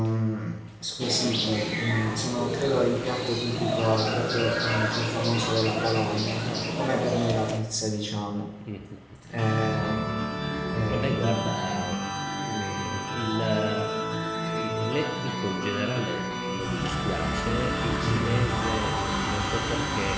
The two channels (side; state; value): both; identical; correlation 1.00